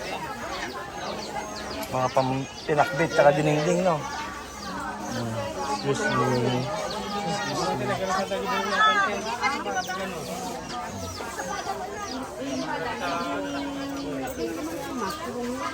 Mga pinakbit tsaka dinengding, no? Excuse me.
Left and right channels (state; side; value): identical; both; correlation 1.00